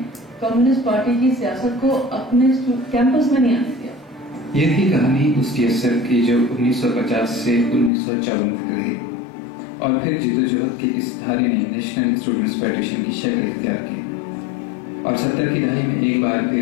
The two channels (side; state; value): right; drops out; at 7.9 s